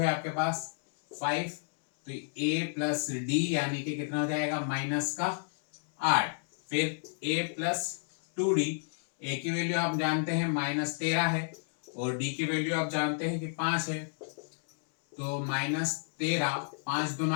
है आपके पास 5। तो ए प्लस डी यानी कि कितना हो जाएगा? -8। फिर ए प्लस 2d। ए की वैल्यू आप जानते हैं -13 है और डी की वैल्यू आप जानते हैं कि 5 है। तो -13, 5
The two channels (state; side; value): silent; right; 57 dB below the other